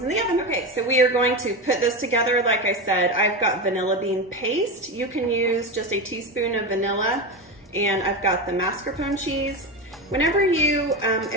in the oven. Okay, so we are going to put this together. Like I said, I've got vanilla bean paste. You can use just a teaspoon of vanilla, and I've got the mascarpone cheese. Whenever you,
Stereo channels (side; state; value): both; normal; correlation 0.18